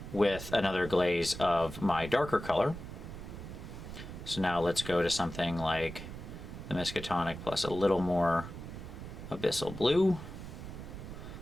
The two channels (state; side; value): noise; right; rumble, 10 dB below the sound